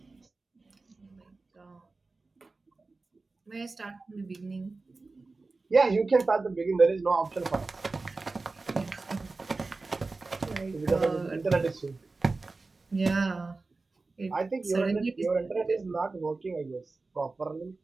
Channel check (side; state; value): left; quieter; 3.7 dB